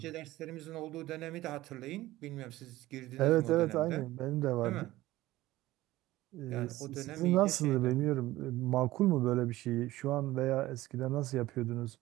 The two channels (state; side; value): quieter; left; 16.9 dB